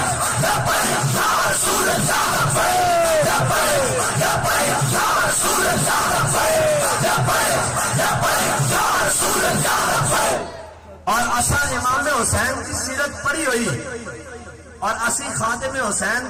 اور اسا امام حسین کی سیرت پڑھی ہوئی اور اسی خاتم حسین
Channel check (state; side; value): identical; both; correlation 1.00